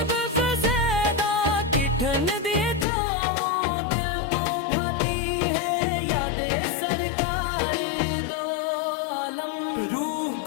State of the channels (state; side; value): drops out; right; at 2.9 s